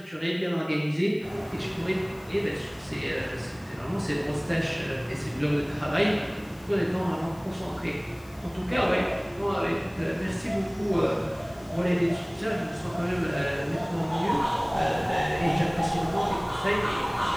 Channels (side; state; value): left; noise; hiss, 27 dB below the sound